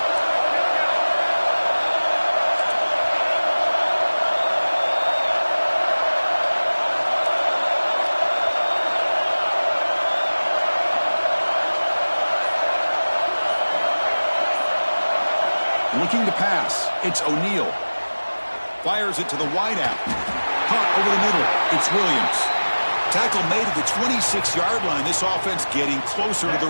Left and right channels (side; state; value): both; inverted; correlation -1.00